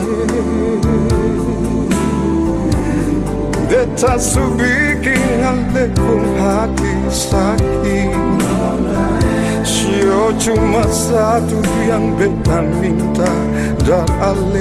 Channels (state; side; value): identical; both; correlation 1.00